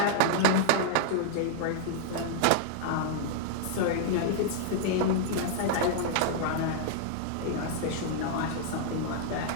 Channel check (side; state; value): both; different; correlation -0.01